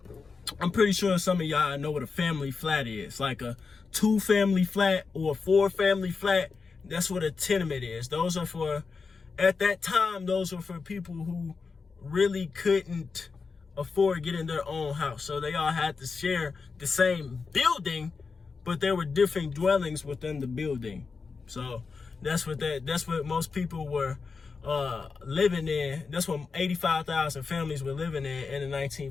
I'm pretty sure some of y'all know what a family flat is, like a 2-family flat or a 4-family flat. That's what a tenement is. Those are for, at that time, those were for people who really couldn't afford getting their own house. So they all had to share the same building, but there were different dwellings within the building. So that's what most people were living in. That's what 85,000 families were living in the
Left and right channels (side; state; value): right; quieter; 4.8 dB